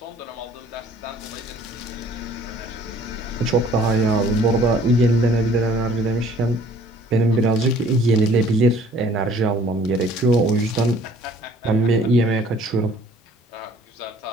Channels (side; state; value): both; normal; correlation 0.55